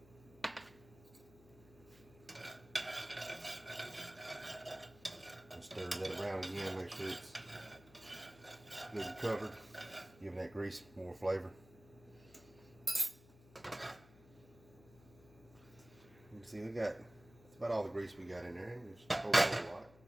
And stir that around again, make sure it's good and covered, giving that grease more flavor. You can see that's about all the grease we got in there. Just a whole lot.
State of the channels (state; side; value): noise; left; hum, 22 dB below the sound